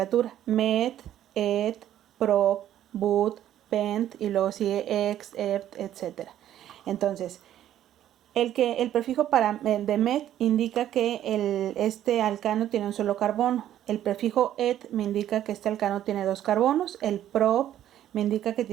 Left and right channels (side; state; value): left; quieter; 11.7 dB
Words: Met, et, prop, but, pent y luego sigue ex, ept, etc. Entonces, el prefijo de met indica que este alcano tiene un solo carbono. El prefijo et me indica que este alcano tiene 2 carbonos. El prop me indica que